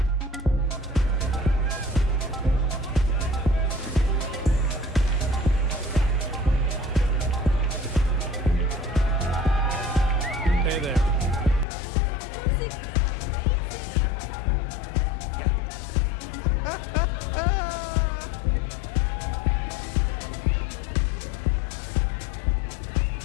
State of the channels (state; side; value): drops out; right; at 11.7 s